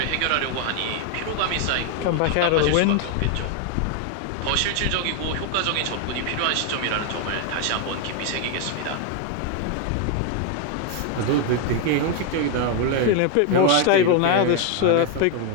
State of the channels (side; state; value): both; different; correlation 0.01